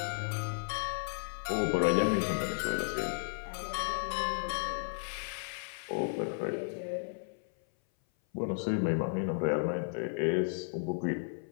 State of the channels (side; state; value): right; silent; 55 dB below the other